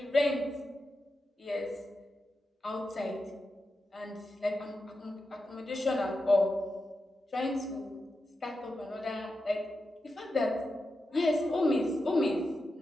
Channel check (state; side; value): normal; both; correlation 0.89